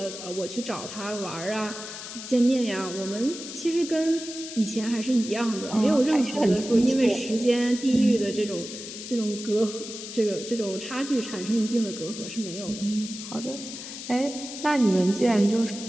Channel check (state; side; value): noise; left; hiss, 10 dB below the sound